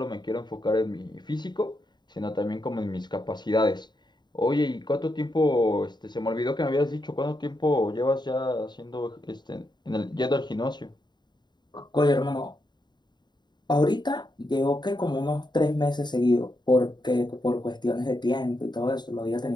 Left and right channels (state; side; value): late; right; 0.21 ms